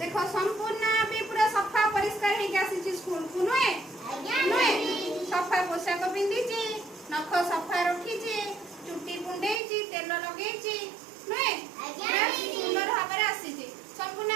संपूर्ण भी पूरा सफा परिष्कार हे के आसी स्कूल को नुए। आज्ञा नुए दीदी। सफा पोशाक पिंदिची नख सफा रखीची चुट्टी कुंडेची तेल लगेची नुए। आज्ञा दीदी। सुंदर भाବରେ आसीची।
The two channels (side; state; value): left; drops out; at 9.6 s